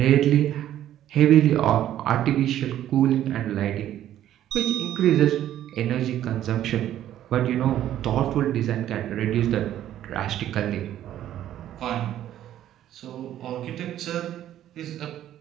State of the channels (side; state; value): left; quieter; 12.0 dB